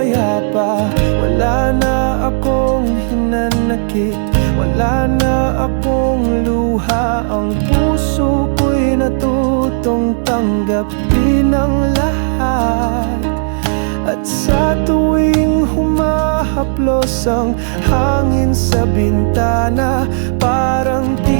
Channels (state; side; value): silent; left; digital silence